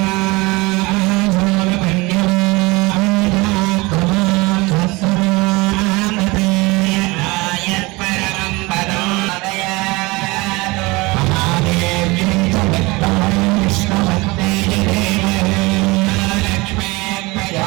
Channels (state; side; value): quieter; left; 23.4 dB